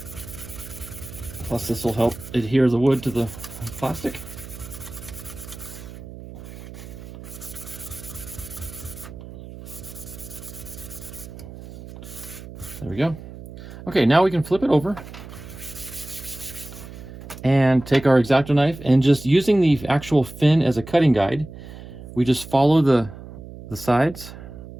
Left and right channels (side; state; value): right; noise; hum, 14 dB below the sound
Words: Plus, this will help adhere the wood to the plastic. There we go. Okay, now we can flip it over and take our X-Acto knife, and just using the actual fin as a cutting guide, we just follow the sides.